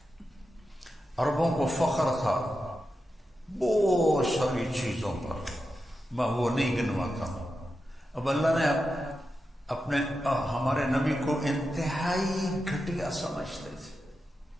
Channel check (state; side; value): normal; both; correlation 0.89